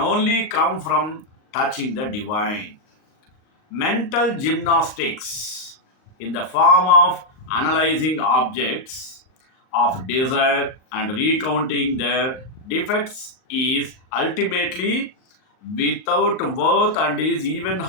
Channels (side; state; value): right; late; 38 ms